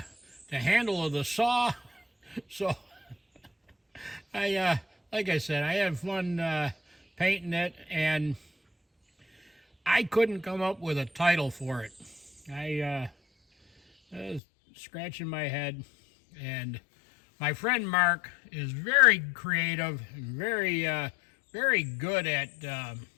handle of the saw. So like I said, I had fun painting it, and I couldn't come up with a title for it. I was scratching my head, and my friend Mark is very creative and very good at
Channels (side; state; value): right; drops out; at 14.4 s